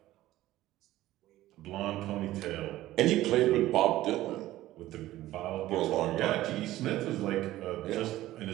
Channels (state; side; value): quieter; left; 15.4 dB